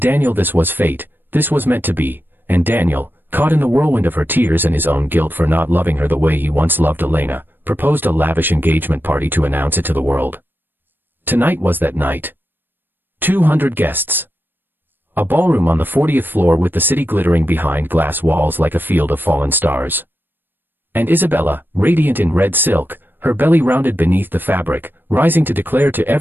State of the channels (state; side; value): late; left; 0.095 ms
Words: this was fate, this was meant to be, and Daniel, caught in the whirlwind of her tears and his own guilt for not loving her the way he once loved Elena, proposed a lavish engagement party to announce it to the world. Tonight was that night. 200 guests. A ballroom on the 40th floor with the city glittering behind glass walls like a field of fallen stars. And Isabella, radiant in red silk, her belly rounded beneath the fabric, rising to declare to